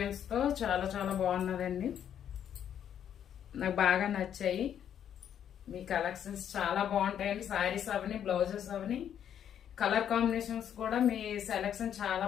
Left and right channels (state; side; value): quieter; right; 9.4 dB